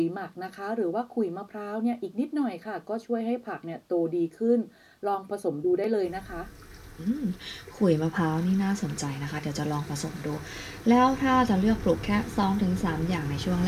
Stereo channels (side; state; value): both; identical; correlation 1.00